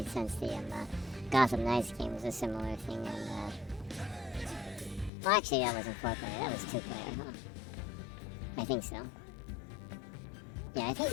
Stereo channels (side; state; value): right; drops out; at 5.1 s